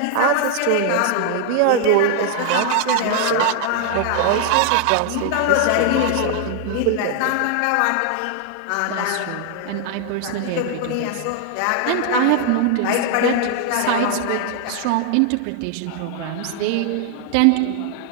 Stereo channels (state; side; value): different; both; correlation 0.00